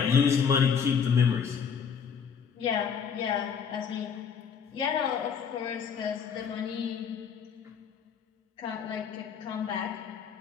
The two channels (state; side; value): quieter; right; 6.9 dB